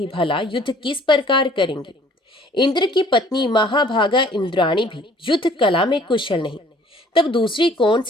भला युद्ध किस प्रकार करेंगी? इंद्र की पत्नी महाभागा इंद्राणी भी युद्ध कला में कुशल नहीं, तब दूसरी कौन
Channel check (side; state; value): both; normal; correlation 0.56